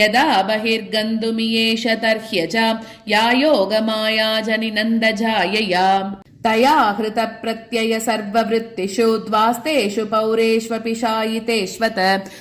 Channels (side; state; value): both; identical; correlation 1.00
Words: बहिर्गन्तुमियेष तर्ह्यजा या योगमाया जनिनन्दजायया तया हृतप्रत्यय सर्ववृत्तिषु द्वास्तेषु पौरेष्वपि शायितेष्वत